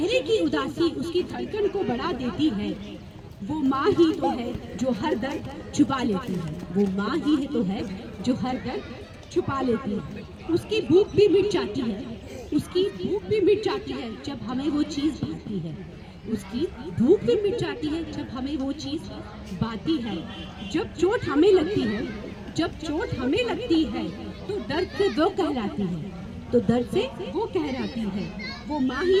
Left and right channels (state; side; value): identical; both; correlation 1.00